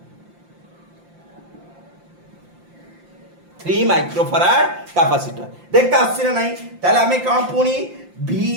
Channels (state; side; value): late; left; 5.7 ms